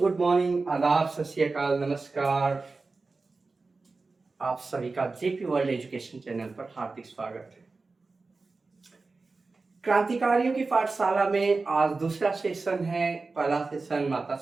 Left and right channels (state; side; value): quieter; left; 3.9 dB